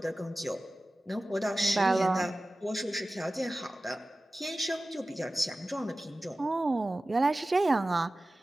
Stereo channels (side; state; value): both; normal; correlation 0.96